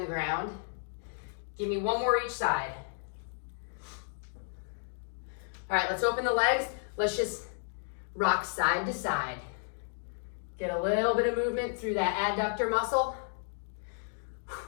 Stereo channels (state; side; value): silent; right; digital silence